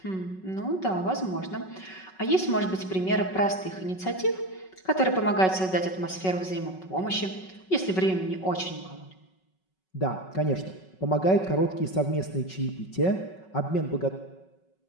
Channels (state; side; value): late; right; 5.3 ms